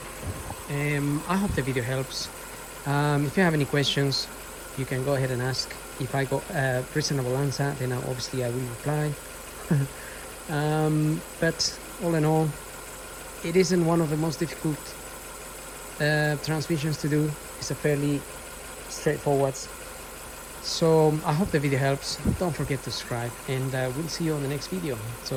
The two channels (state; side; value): identical; both; correlation 1.00